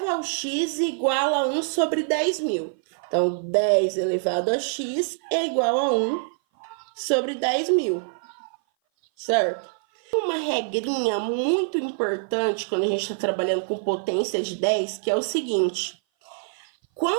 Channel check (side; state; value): left; silent; 57 dB below the other